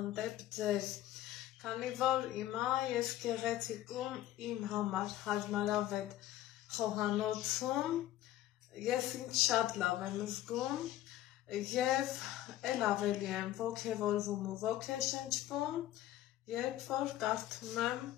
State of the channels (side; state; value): right; quieter; 13.8 dB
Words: ձեզ, քանի որ հիմա ես գեղեցիկում իմ համար հարմարավետ խոհանոցում, ես ինձ շատ լավ եմ զգում, և էլ ավելի եմ ոգևորվում ու ոգեշնչվում, երբ որ կարդում եմ